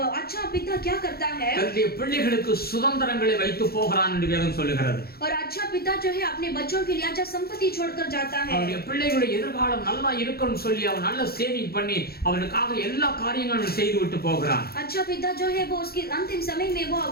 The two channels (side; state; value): right; late; 0.45 ms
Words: अच्छा पिता क्या करता है? தன்னுடைய பிள்ளைகளுக்கு சுதந்திரங்களை வைத்து போகிறான் என்று வேதம் சொல்லுகிறது. और अच्छा पिता जो है अपने बच्चों के लिए अच्छा संपत्ति छोड़कर जाता है। அவருடைய பிள்ளைகளுடைய எதிர்காலம் நல்லா இருக்கணும்னு சொல்லி அவன் நல்ல சேவிங் பண்ணி அவனுக்காக எல்லா காரியங்களும் செய்து விட்டு போகிறான். अच्छा पिता जो है वो उसके अंतिम समय में वो